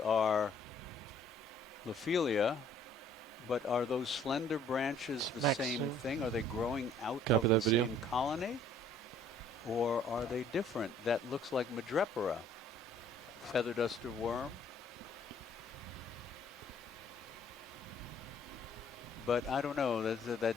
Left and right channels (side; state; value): both; normal; correlation 0.58